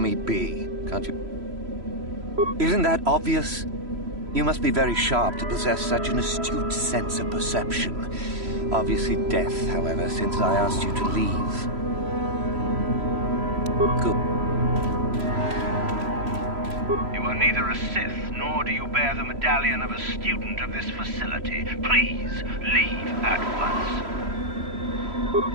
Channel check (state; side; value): late; left; 3.0 ms